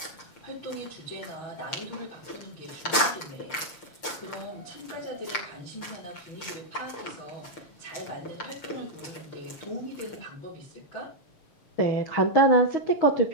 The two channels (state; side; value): late; right; 6.6 ms